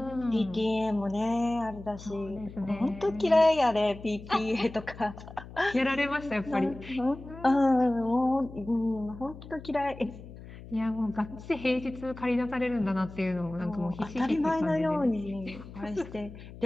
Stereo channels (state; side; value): noise; left; hum, 15 dB below the sound